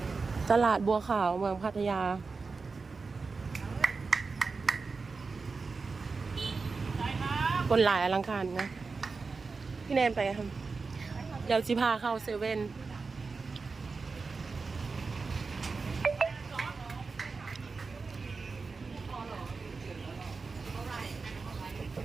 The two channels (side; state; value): left; quieter; 4.4 dB